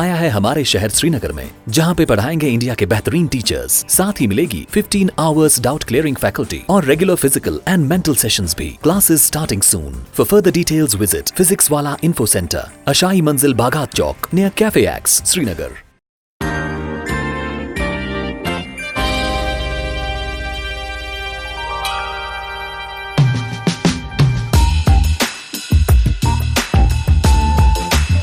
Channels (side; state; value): both; identical; correlation 1.00